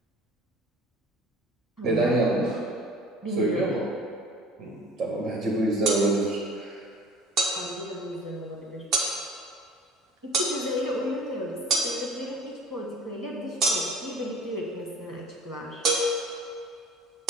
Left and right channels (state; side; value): normal; both; correlation 0.45